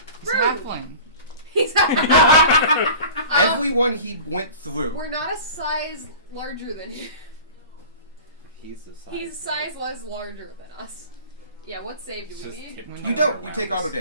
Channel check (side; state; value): both; inverted; correlation -0.40